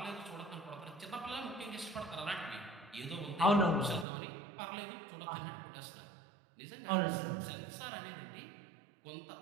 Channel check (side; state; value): left; drops out; at 4.0 s